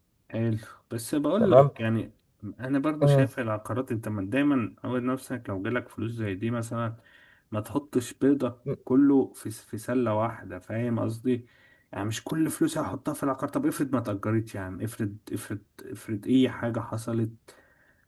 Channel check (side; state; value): both; identical; correlation 1.00